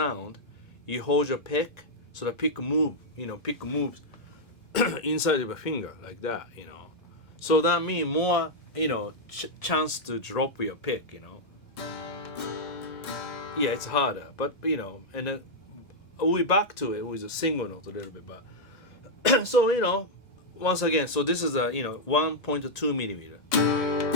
you hold your pick, so the pick moves inside of a finger like that, you know. So that means more, you know, chance to drop your pick, you know. Yeah, it's harder, but you know, and then we back to it with a single note a little bit, but so you know, once again, so this is a, you know, 1.2mm.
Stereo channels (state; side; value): normal; both; correlation -0.04